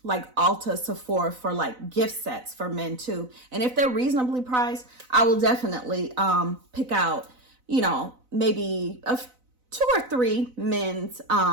like Ulta, Sephora for like gift sets for men too. And if they're reasonably priced, I will definitely pick out, you know, maybe 2 or 3 men's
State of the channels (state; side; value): late; left; 4.0 ms